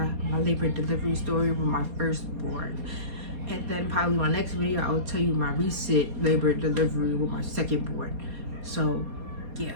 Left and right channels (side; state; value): left; late; 4.2 ms